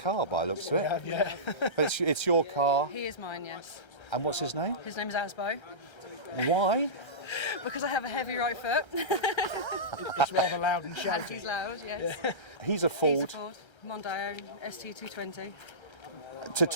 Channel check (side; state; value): right; late; 1.3 ms